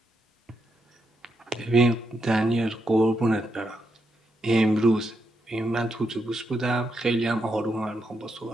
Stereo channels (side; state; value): both; normal; correlation 0.81